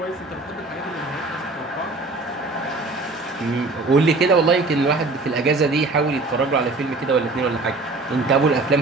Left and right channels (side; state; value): left; quieter; 3.4 dB